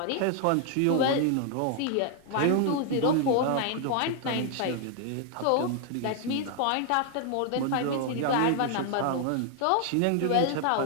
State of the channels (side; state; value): both; different; correlation 0.00